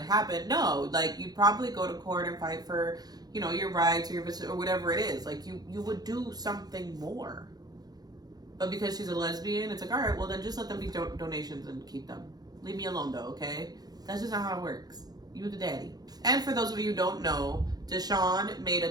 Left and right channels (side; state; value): left; late; 0.19 ms